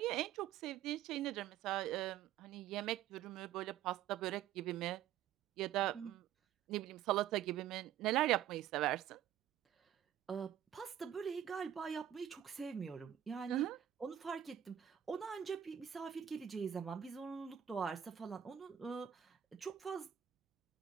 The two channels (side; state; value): left; quieter; 10.6 dB